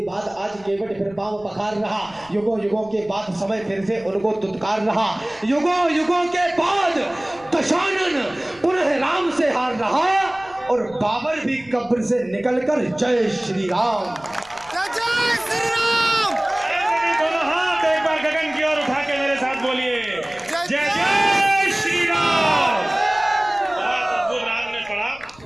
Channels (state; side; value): noise; left; rumble, 25 dB below the sound